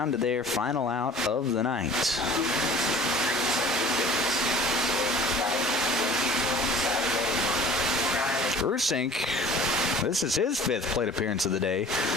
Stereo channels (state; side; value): normal; both; correlation 0.46